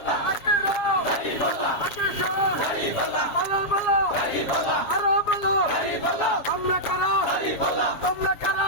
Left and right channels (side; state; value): right; late; 7.3 ms